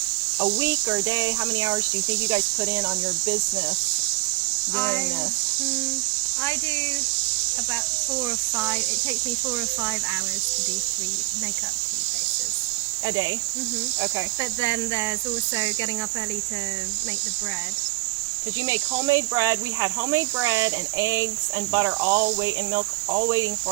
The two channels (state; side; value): quieter; left; 24.2 dB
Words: A week or a day? How many hours do you think you guys put in on your business doing this? I do about 4 or 5. It takes me 4 or 5 hours to do 3 makeup 3 places. A day? Okay. But then there's also getting up early to make the bread. Did you make homemade bread? We had homemade bread and eggs and butter and milk all waiting